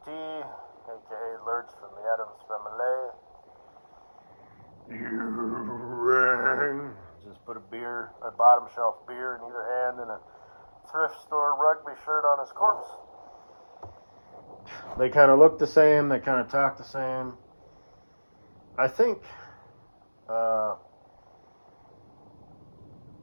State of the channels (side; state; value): both; inverted; correlation -1.00